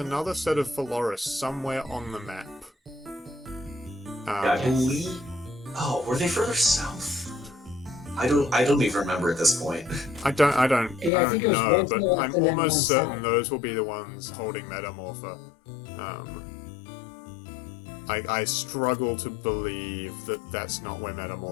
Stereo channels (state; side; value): drops out; right; at 11.1 s